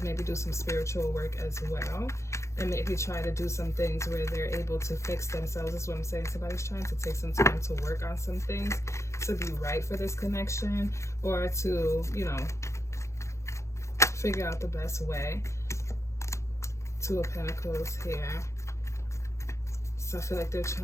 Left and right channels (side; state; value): right; late; 0.14 ms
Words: maybe do some spiritual work as well, and maybe try to do some things where they're able to fix themselves. That's what I'm saying. Somebody's trying to take some time to work on some things to be right for this connection, or to, you know, figure out the best way. Two of Pentacles here. So I feel like they're